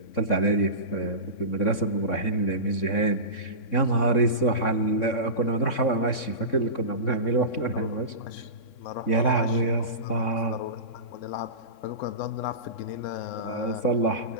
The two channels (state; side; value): late; right; 3.6 ms